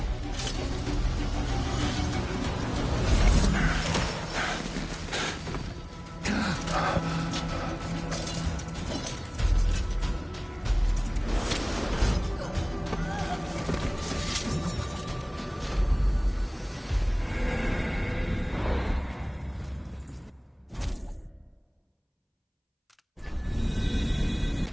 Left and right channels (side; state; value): both; identical; correlation 1.00